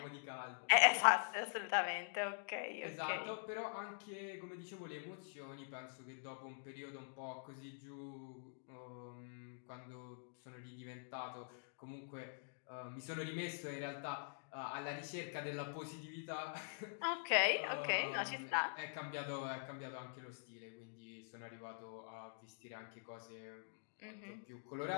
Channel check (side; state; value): right; silent; digital silence